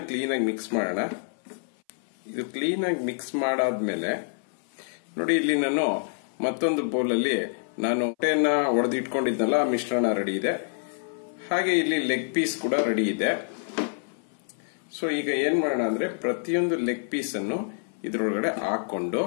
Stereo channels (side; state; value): right; silent; 58 dB below the other